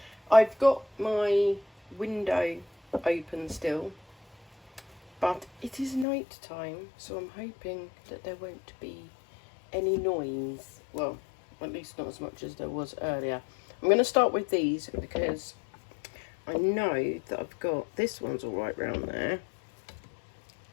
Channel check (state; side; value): drops out; right; at 6.1 s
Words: I've got my window open still, but it is night time, so I'm hoping that there won't be any noise. Well, at least not as much as there was earlier. I'm going to start with these because I know that I've got, this one's all right round there,